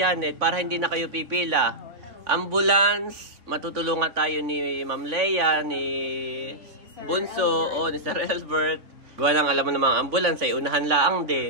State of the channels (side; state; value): left; late; 3.6 ms